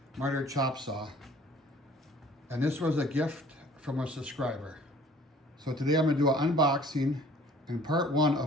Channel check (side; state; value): both; normal; correlation 0.53